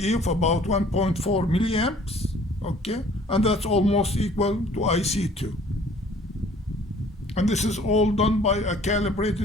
of about 1.4 milliamps. Okay, and that's almost equal to IC2. And this is all done by a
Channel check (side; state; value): both; normal; correlation 0.54